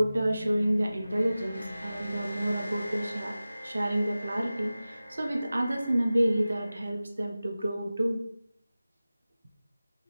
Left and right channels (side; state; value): both; inverted; correlation -0.96